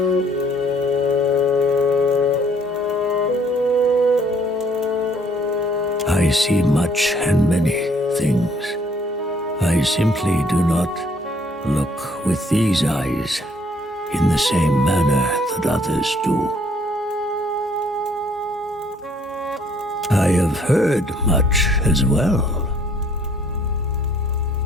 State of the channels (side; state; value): both; normal; correlation 0.62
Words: I see much and many things. I simply do not look with these eyes in the same manner that others do. I have heard much as well.